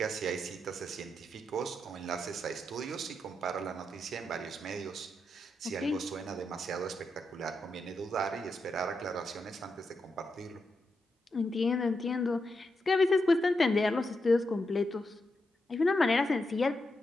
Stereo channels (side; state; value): both; normal; correlation 0.85